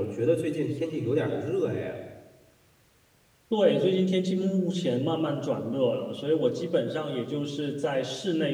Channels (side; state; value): both; identical; correlation 1.00